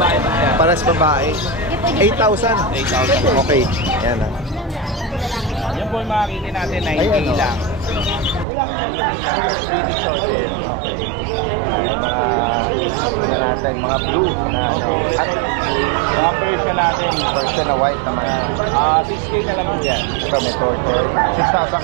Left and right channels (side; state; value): left; drops out; at 8.5 s